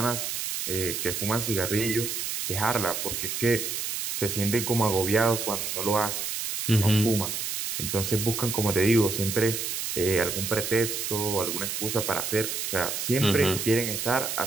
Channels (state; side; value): noise; right; hiss, 3 dB below the sound